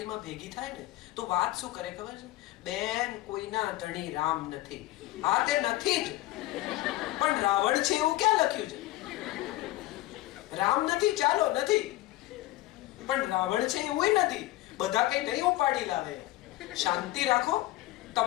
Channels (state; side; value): quieter; right; 17.0 dB